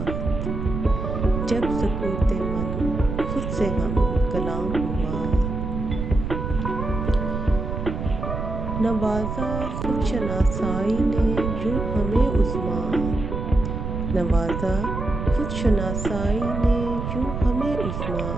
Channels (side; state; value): right; noise; rumble, 4 dB below the sound